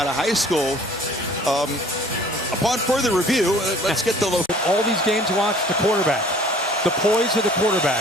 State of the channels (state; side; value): normal; both; correlation 0.52